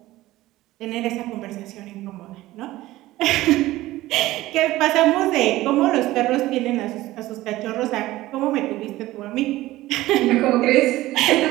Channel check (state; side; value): quieter; left; 16.9 dB